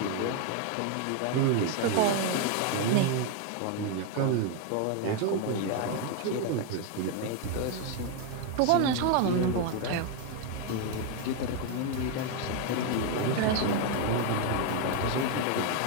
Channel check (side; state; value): both; different; correlation 0.01